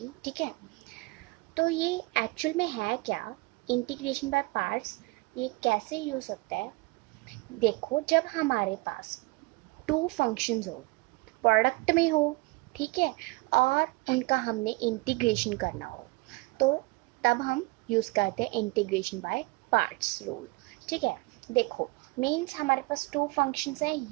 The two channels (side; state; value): left; quieter; 25.3 dB